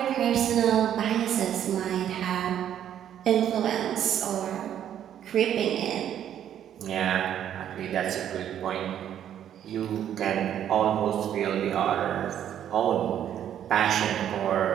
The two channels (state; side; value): quieter; left; 10.2 dB